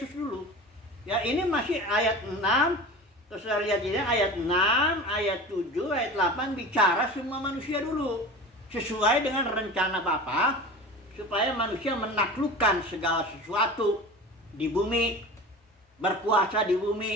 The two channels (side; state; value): both; normal; correlation 0.34